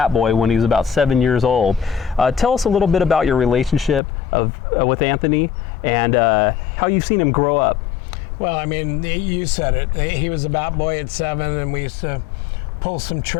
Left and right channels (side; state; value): right; drops out; at 4.0 s